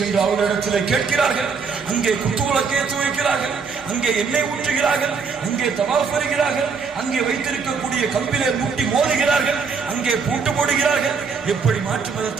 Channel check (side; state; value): left; quieter; 5.4 dB